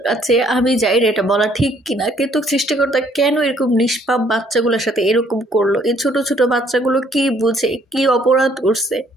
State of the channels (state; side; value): normal; both; correlation 0.63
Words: কাছে। আমি জানি না এটা বলা ঠিক কিনা, কিন্তু সৃষ্টিকর্তা কেন এরকম নিষ্পাপ বাচ্চাগুলোর সাথে এরকম করলো? এই ছোট ছোট বাচ্চাগুলো কি বুঝে, কি অপরাধ করছে?